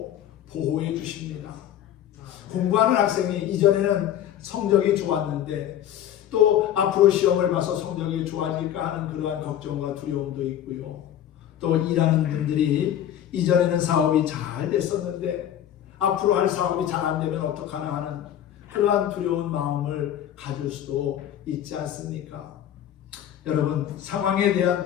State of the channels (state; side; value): quieter; right; 10.8 dB